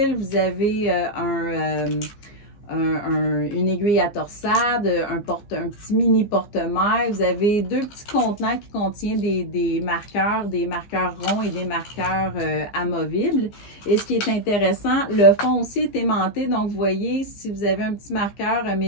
vous avez une aiguille à torsade, un petit mini porte-mailles. Vous avez deux petits contenants qui contiennent des marqueurs ronds et des marqueurs amovibles. Et ce qui est intéressant, le fond aussi est aimanté. Donc, vous voyez, si vous avez un petit marqueur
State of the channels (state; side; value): late; right; 15 ms